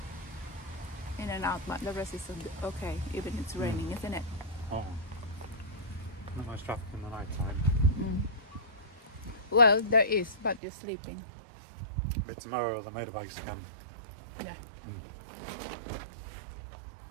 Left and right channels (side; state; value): left; drops out; at 10.6 s